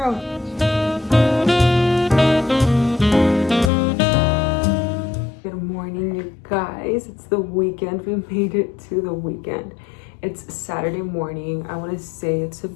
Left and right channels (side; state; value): right; drops out; at 3.7 s